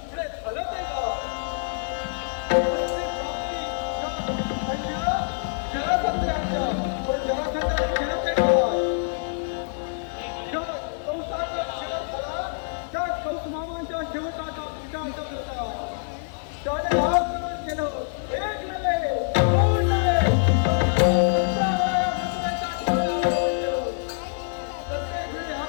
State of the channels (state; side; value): silent; right; digital silence